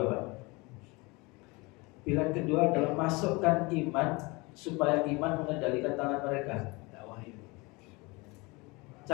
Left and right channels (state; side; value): quieter; right; 25.6 dB